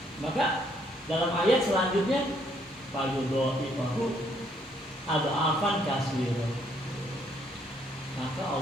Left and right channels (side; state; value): both; normal; correlation 0.69